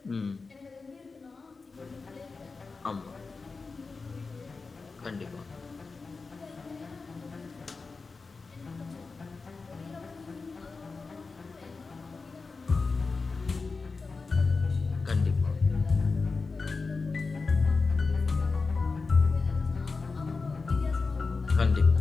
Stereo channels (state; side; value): quieter; right; 4.3 dB